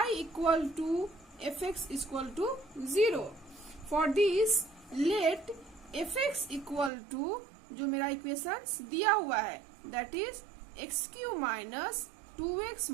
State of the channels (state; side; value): drops out; left; at 6.9 s